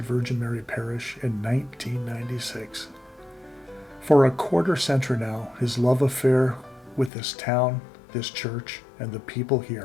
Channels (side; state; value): right; drops out; at 7.1 s